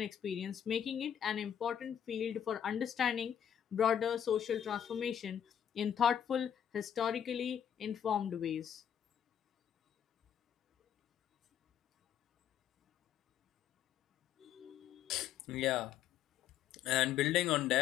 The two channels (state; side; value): quieter; right; 9.3 dB